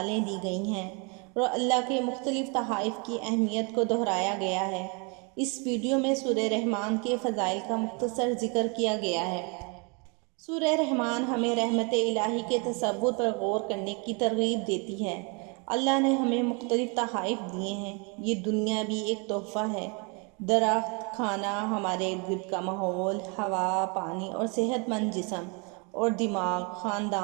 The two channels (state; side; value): quieter; left; 32.9 dB